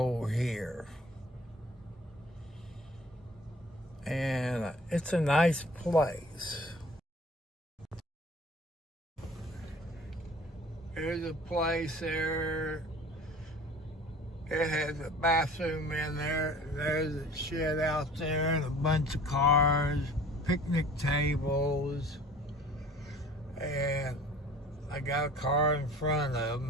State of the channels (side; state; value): both; normal; correlation 0.47